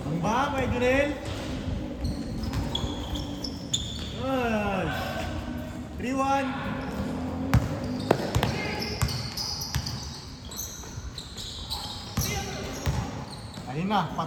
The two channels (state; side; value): identical; both; correlation 1.00